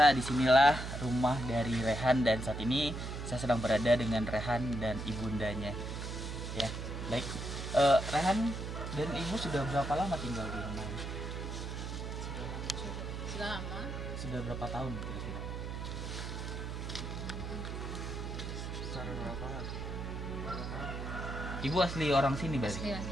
disinilah rumah dari Rehan, dan saat ini saya sedang berada dengan Rehan dan ibundanya. Ya, baik. Rehan dan Ibu sudah berapa lama tinggal di rumah ini? Sudah lama. Sudah berapa tahun kira-kira? Secara berapa? Ibu asli orang sini berarti? Asli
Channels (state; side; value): noise; right; hum, 5 dB below the sound